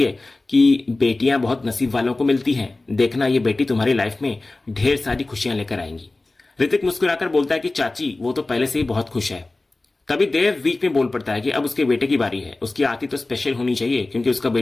है कि बेटियां बहुत नसीब वालों को मिलती हैं, देखना ये बेटी तुम्हारी लाइफ में ढेर सारी खुशियां लेकर आएंगी। ऋतिक मुस्कुराकर बोलता है कि चाची वो तो पहले से ही बहुत खुश है। तभी देव बीच में बोल पड़ता है कि अब उसके बेटे की बारी है। उसकी आरती तो स्पेशल होनी चाहिए, क्योंकि उसका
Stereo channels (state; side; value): quieter; right; 3.1 dB